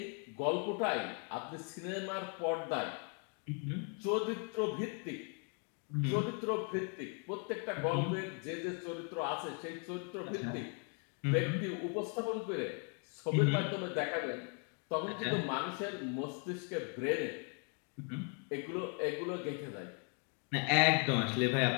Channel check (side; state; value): right; quieter; 38.2 dB